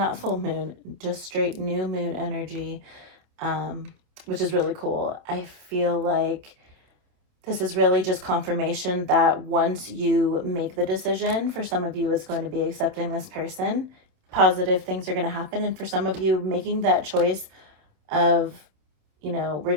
full moon, just straight new moon energy, which is really cool. I feel like this is really just confirmation that once you make the decision, for some of you, it's going to be accepting this person. Positive things are going to happen. And for some of you, making that choice of, you know,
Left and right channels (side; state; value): left; late; 28 ms